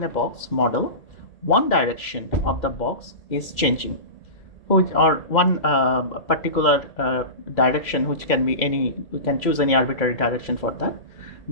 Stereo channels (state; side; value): late; right; 2.1 ms